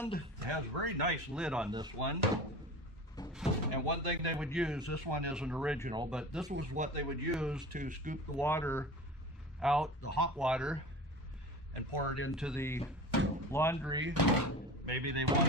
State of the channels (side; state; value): both; normal; correlation 0.35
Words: it has a very nice lid on this one. And one thing they would use, this one isn't original, but this was what they would use to scoop the water out, the hot water, and pour it into the laundry. Maybe they